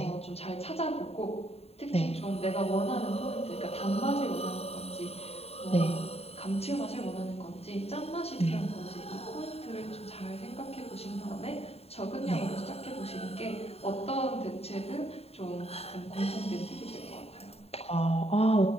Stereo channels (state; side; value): late; right; 0.29 ms